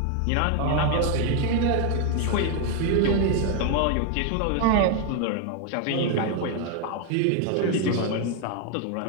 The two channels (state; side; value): different; both; correlation 0.01